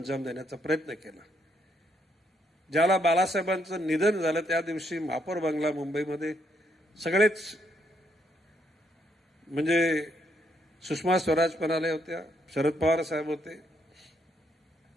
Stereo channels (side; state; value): both; normal; correlation 0.74